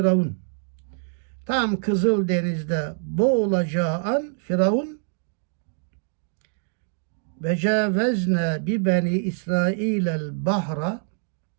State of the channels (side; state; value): left; silent; digital silence